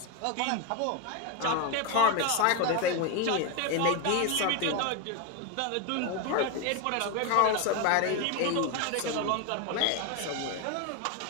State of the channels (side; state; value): both; different; correlation 0.02